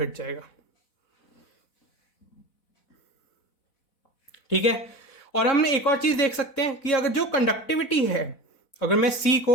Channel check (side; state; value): right; late; 4.0 ms